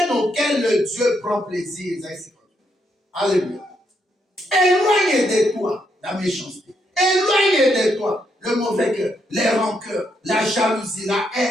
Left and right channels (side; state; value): both; normal; correlation 0.77